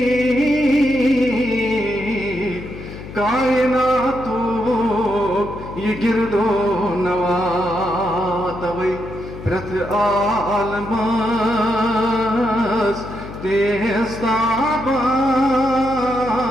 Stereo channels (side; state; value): left; noise; hum, 12 dB below the sound